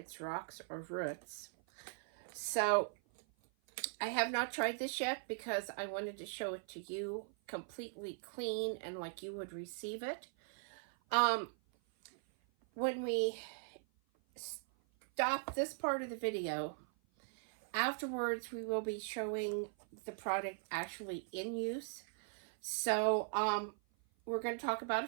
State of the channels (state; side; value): silent; left; 51 dB below the other